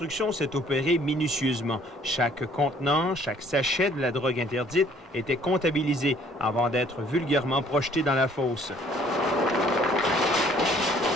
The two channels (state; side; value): normal; both; correlation 0.59